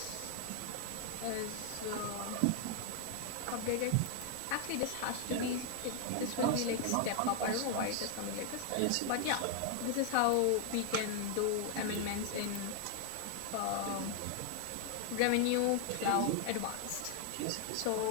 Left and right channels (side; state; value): both; different; correlation 0.00